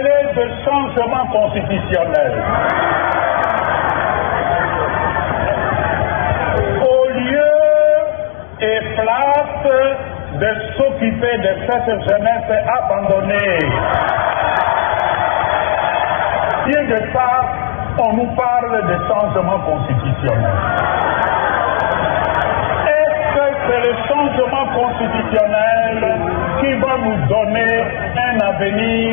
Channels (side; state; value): right; silent; digital silence